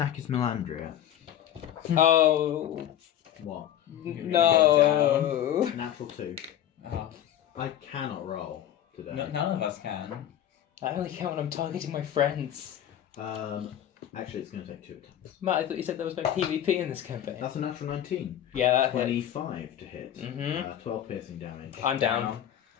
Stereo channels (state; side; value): quieter; right; 11.0 dB